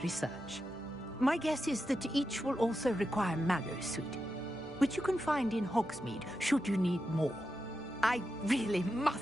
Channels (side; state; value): both; normal; correlation 0.89